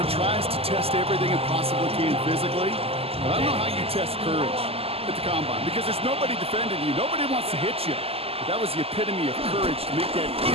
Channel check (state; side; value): late; left; 0.29 ms